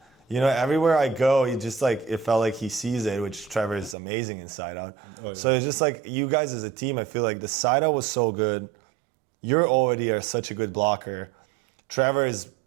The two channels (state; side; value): drops out; left; at 4.0 s